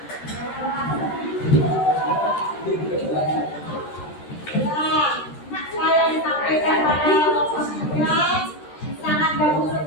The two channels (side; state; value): right; late; 13 ms